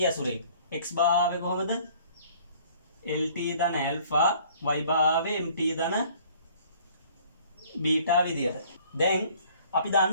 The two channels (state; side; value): inverted; both; correlation -0.55